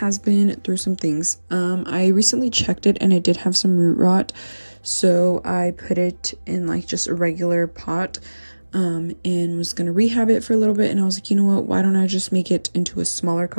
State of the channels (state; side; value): inverted; both; correlation -1.00